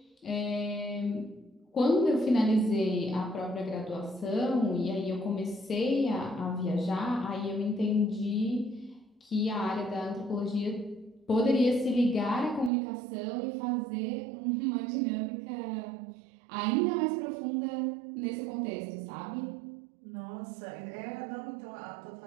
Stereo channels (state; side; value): drops out; left; at 12.7 s